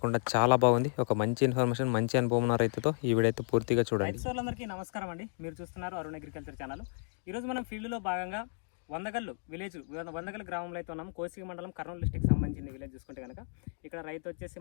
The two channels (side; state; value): right; silent; 56 dB below the other